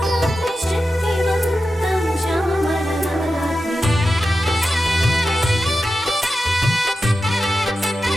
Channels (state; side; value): normal; both; correlation 0.91